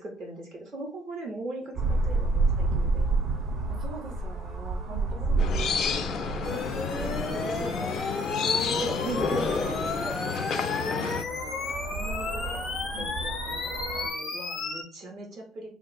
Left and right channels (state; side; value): normal; both; correlation 0.61